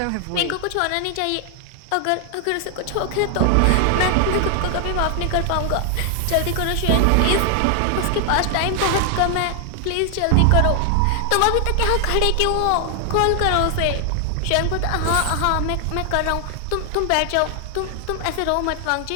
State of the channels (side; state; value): both; different; correlation 0.00